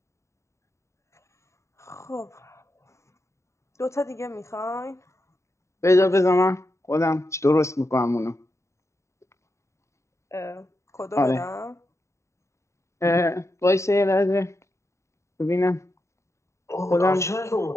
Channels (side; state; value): right; late; 0.14 ms